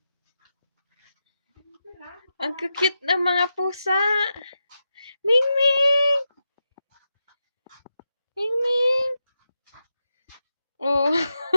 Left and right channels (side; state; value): both; inverted; correlation -0.89